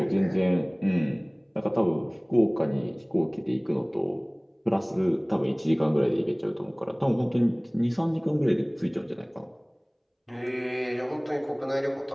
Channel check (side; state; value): both; identical; correlation 1.00